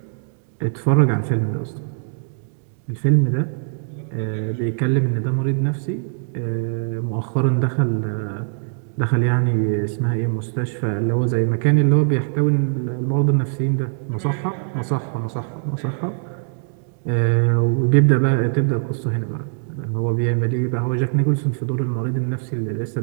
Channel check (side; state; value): left; silent; digital silence